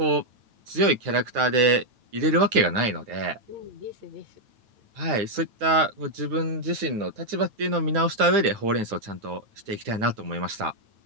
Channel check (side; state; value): left; late; 9.2 ms